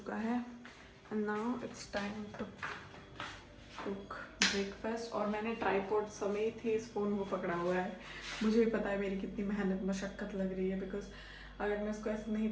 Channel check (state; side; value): identical; both; correlation 1.00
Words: है। And now it's time to cook breakfast. और मैंने ट्राईपॉड समेत ही इस फ़ोन को पकड़ा हुआ है। मुझे भी पता है मेरी कितनी मेहनत मशक्क़त लग रही है, बिकॉज अगर मैं इसको ऐसे